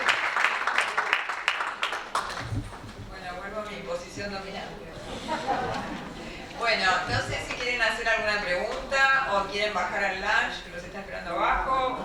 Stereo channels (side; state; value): both; identical; correlation 1.00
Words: Bueno, vuelvo a mi posición dominante. Bueno, no sé si quieren hacer alguna pregunta o quieren bajar al lunch, que los está esperando abajo.